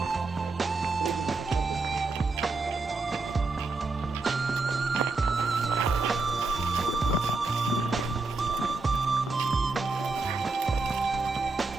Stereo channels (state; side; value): quieter; left; 3.7 dB